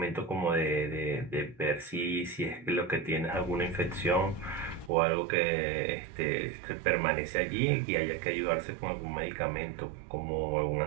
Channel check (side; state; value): left; drops out; at 4.9 s